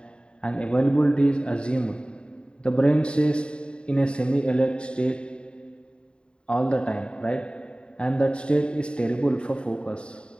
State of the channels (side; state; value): right; late; 0.053 ms